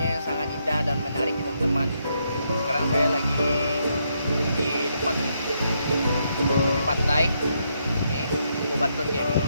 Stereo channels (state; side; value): inverted; both; correlation -0.77